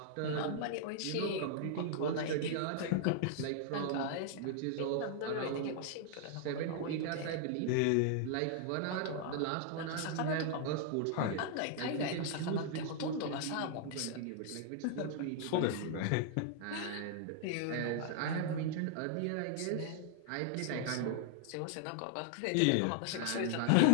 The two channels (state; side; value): different; both; correlation -0.01